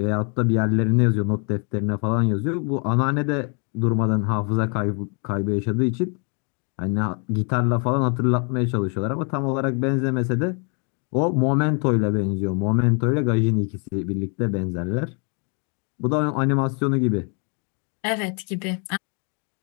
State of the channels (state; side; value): quieter; right; 37.8 dB